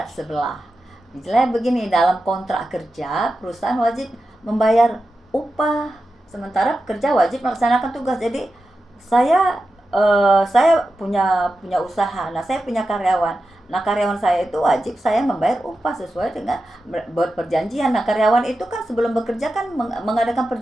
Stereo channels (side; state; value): both; normal; correlation 0.91